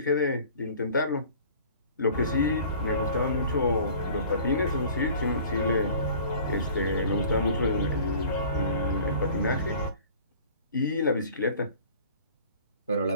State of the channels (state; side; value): inverted; both; correlation -0.47